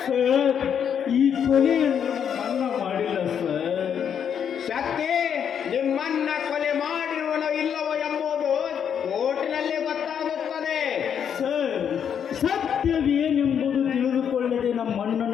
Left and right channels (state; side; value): quieter; right; 8.1 dB